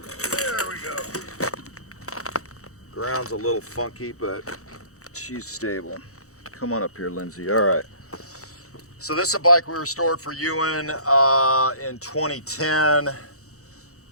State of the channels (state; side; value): late; right; 0.65 ms